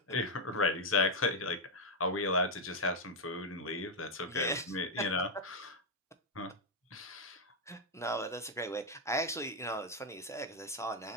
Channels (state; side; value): normal; both; correlation 0.01